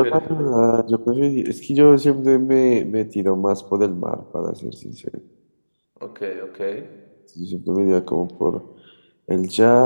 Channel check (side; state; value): both; inverted; correlation -1.00